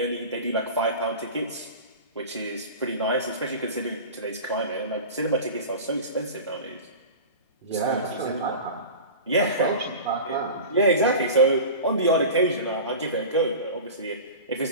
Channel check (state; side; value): inverted; both; correlation -0.33